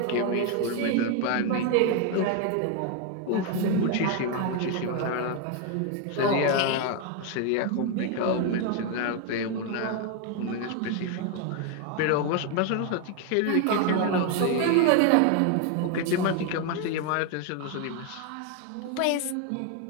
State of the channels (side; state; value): both; different; correlation 0.01